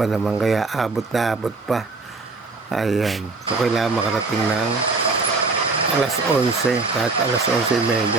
naman, kaya abot na abot pa. Ayan. So, kailangan makarating ng alas 11. Kahit alas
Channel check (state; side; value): quieter; left; 3.8 dB